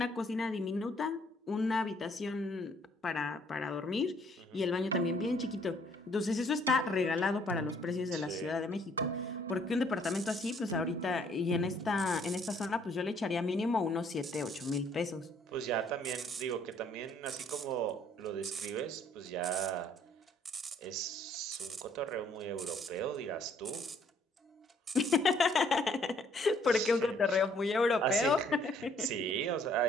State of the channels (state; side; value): normal; both; correlation 0.63